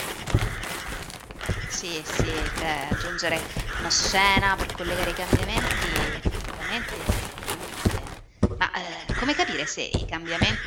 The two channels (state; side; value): identical; both; correlation 1.00